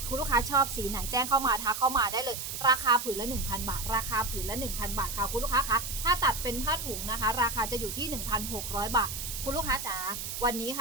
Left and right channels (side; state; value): right; noise; hiss, 6 dB below the sound